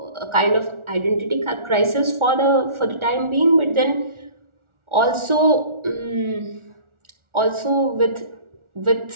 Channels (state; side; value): late; left; 1.4 ms